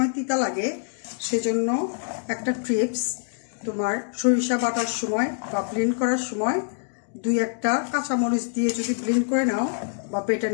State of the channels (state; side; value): silent; right; digital silence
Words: তিতা লাগে, সেজন্য একটা টিপস, তোমার সরিষা বাটার সময় বা ব্লেন্ড করার সময় 2-1টা কাঁচামরিচ দিয়ে যদি ব্লেন্ড করে নাও বা বেটে